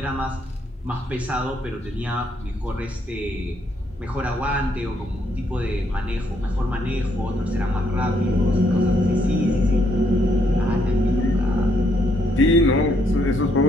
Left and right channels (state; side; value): normal; both; correlation 0.72